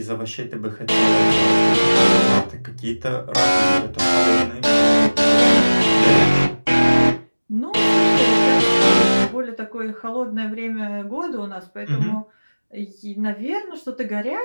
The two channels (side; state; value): both; inverted; correlation -1.00